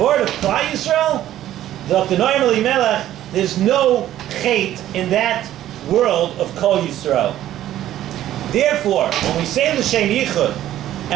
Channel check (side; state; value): left; quieter; 12.8 dB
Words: word of Klal Yisrael, the Noam Elimelech, there's no chet in that world of Kol Yisrael. Therefore, when we say L'Shem Yichud,